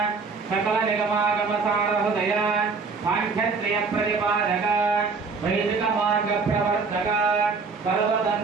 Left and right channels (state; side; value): quieter; left; 4.7 dB